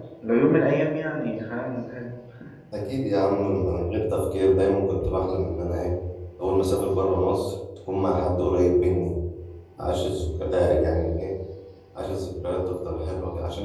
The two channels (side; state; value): both; identical; correlation 1.00